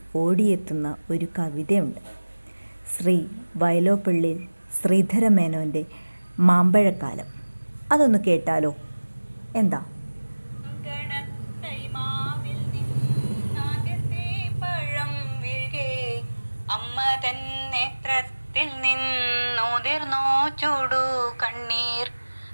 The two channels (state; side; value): inverted; both; correlation -1.00